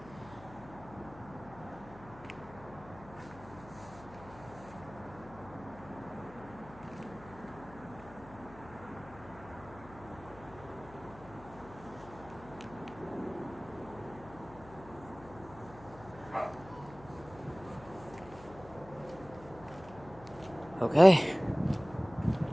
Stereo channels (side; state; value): left; noise; hum, 19 dB below the sound